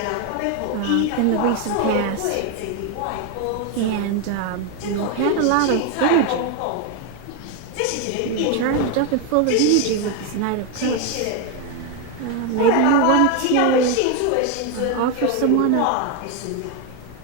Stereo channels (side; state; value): both; different; correlation 0.01